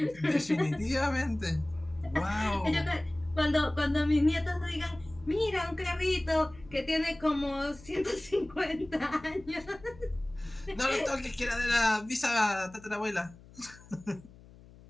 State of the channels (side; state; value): left; noise; hum, 22 dB below the sound